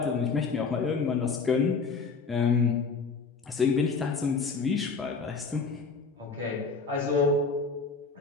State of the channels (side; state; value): right; quieter; 4.6 dB